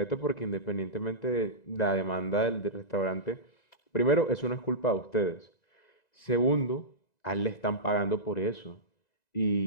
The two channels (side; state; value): right; late; 2.0 ms